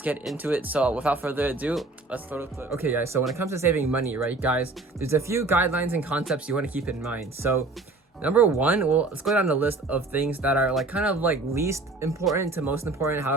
get into it. So without further ado, let's throw the clip. Okay, guys, so when it comes to saving money, right, guys, there's a few guidelines and concepts you want to keep in mind. So number one, well, let's go down the list of things that are like kind of like least important to most important.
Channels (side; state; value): left; quieter; 3.3 dB